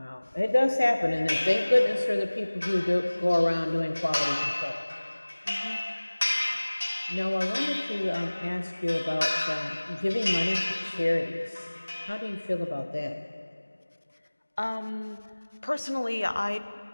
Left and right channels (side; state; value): both; inverted; correlation -1.00